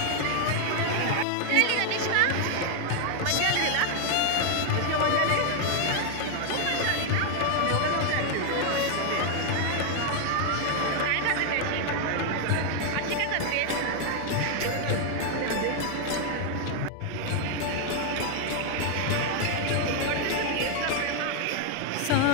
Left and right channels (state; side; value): different; both; correlation 0.00